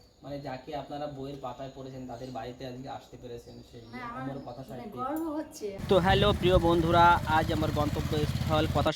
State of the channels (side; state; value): both; identical; correlation 1.00